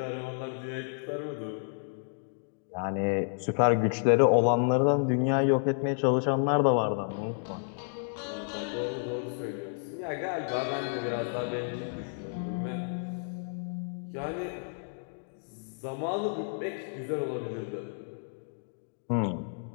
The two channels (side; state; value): right; silent; digital silence